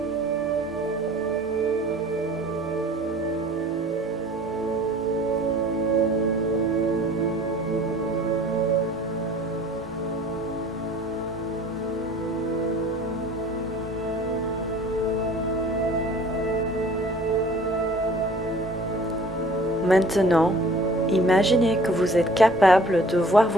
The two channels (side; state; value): both; normal; correlation 0.49